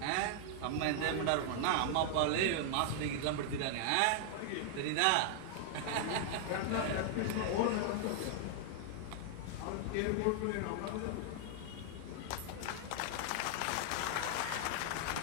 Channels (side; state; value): both; different; correlation 0.00